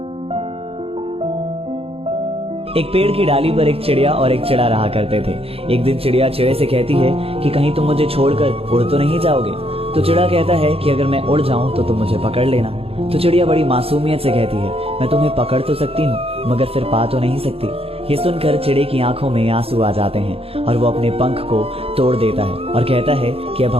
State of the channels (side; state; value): left; late; 0.28 ms